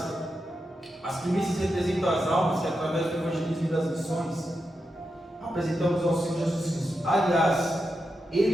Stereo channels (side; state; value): both; normal; correlation 0.88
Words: as primícias representam as almas que, através do evangelismo e das missões, apresentamos ao Senhor Jesus Cristo. Aliás,